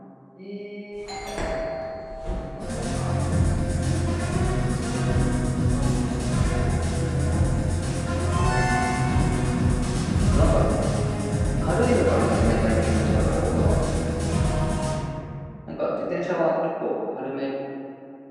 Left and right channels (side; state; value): both; identical; correlation 1.00